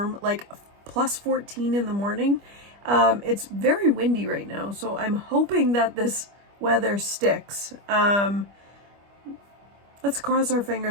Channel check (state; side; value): late; left; 25 ms